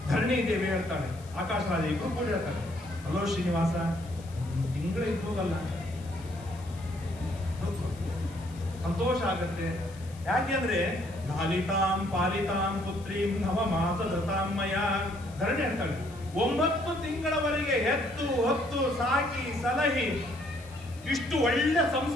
ಧರಣಿ ದೇವಿ ಹೇಳ್ತಾಳೆ, ಆಕಾಶರಾಜ ಇಬ್ರು ಕೂಡ ಹೇಳ್ತಾರೆ, ಹಲೋ ಶ್ರೀನಿವಾಸ, ತಿಂಗಳು ಇದ್ದೋಗಲ್ಲ, ಸಂತೋಷ ಆಗತ್ತೆ. ಯಾಕೆಂದ್ರೆ ಲಾಲಿತಾಂ ಪಾಲಿತಾಂ ಪುತ್ರೀಂ ನವಮಾಸ ಧೃತಾಮಯ. ಧರಣಿ ಹೇಳ್ತಾಳೆ, 9 ತಿಂಗಳವರೆಗೆ ಹೆತ್ತು ಹೊತ್ತು ಸಾಕಿ ಸಲಹಿ ಇಷ್ಟು ಒಳ್ಳೆ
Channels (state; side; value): noise; left; hiss, 23 dB below the sound